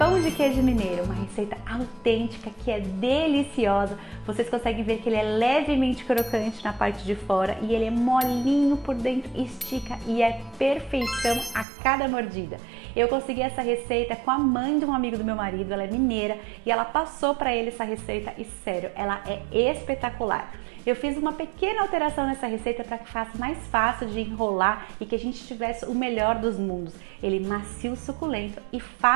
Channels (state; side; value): drops out; left; at 11.7 s